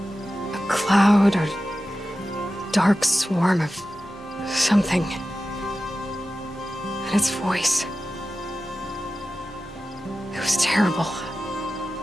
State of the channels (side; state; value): both; normal; correlation 0.94